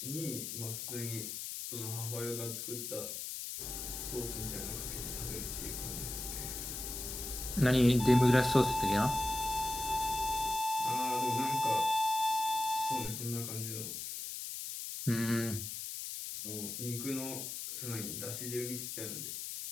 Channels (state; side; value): noise; left; hiss, 6 dB below the sound